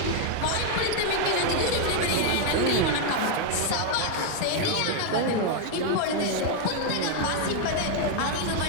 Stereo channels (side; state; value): both; different; correlation 0.01